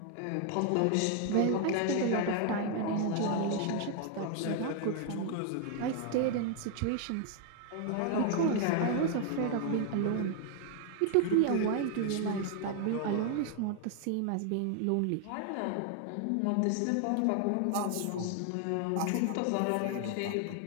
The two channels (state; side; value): different; both; correlation 0.00